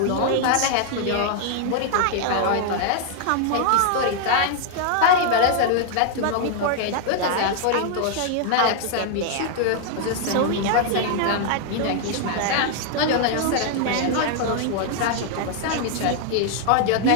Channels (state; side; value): different; both; correlation 0.00